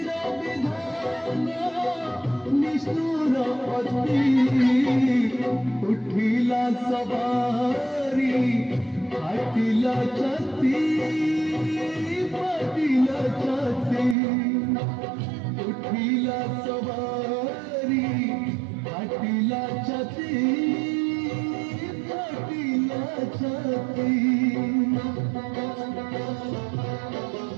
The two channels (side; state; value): left; drops out; at 14.2 s